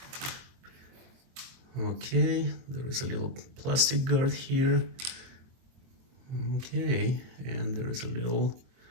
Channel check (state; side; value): late; left; 23 ms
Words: Okay, there is a little plastic guard here. Okay, and there is a little